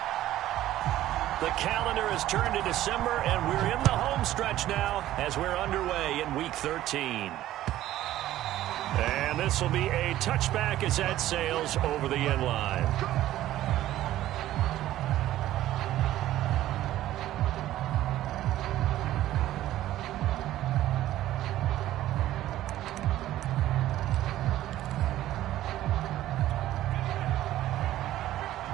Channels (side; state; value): left; quieter; 14.0 dB